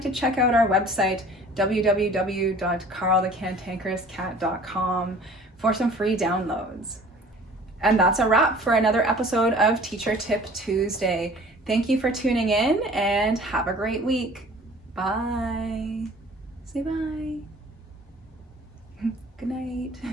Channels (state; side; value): normal; both; correlation 0.48